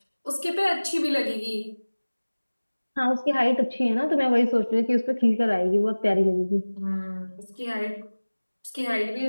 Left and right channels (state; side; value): inverted; both; correlation -1.00